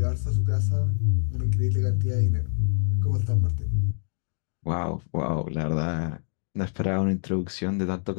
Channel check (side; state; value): right; silent; digital silence